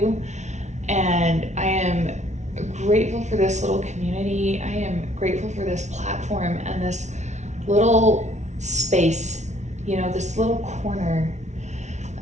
And I am grateful for this little community. I am grateful for this platform and this little space, this little corner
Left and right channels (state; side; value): late; left; 0.33 ms